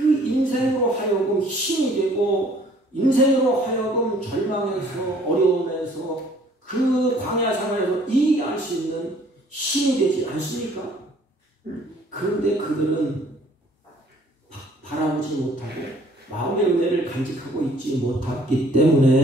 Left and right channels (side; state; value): both; normal; correlation 0.58